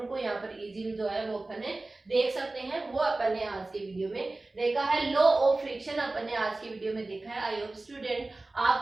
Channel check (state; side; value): quieter; left; 3.1 dB